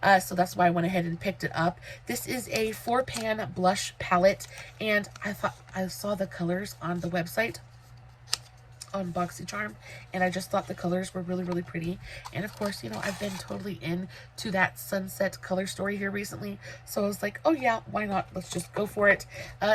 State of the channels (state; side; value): identical; both; correlation 1.00